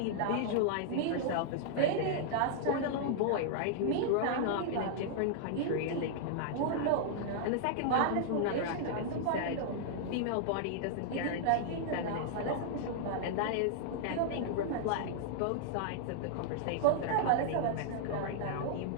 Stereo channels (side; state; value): both; different; correlation -0.01